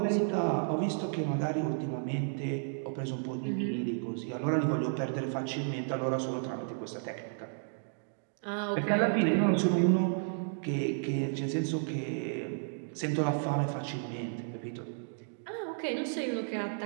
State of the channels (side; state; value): left; silent; digital silence